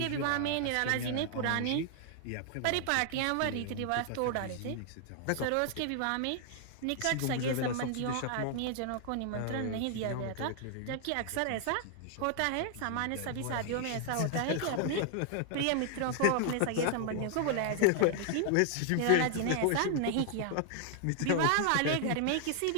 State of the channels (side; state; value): both; different; correlation 0.00